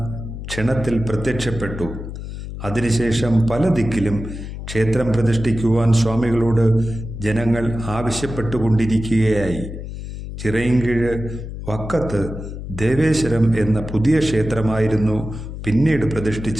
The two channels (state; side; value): noise; left; hum, 9 dB below the sound